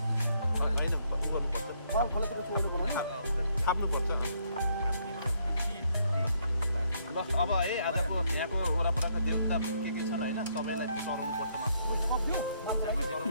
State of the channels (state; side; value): inverted; both; correlation -0.71